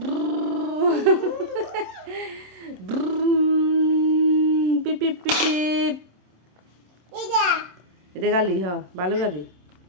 পিপি পিপি এটা গালি হ ভালো গালি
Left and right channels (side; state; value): left; late; 27 ms